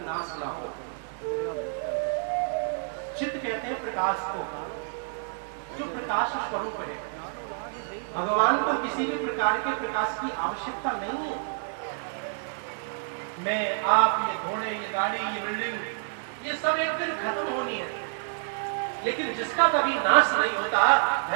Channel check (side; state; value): left; silent; digital silence